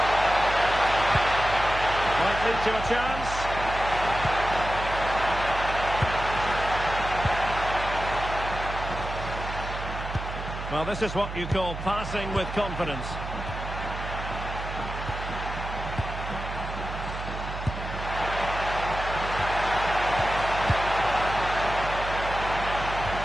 Might lead to a chance. Well, this is what you call passing with confidence.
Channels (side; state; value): right; noise; hum, 8 dB below the sound